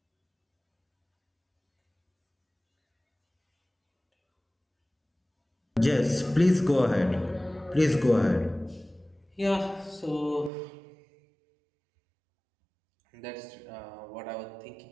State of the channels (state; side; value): drops out; left; at 10.5 s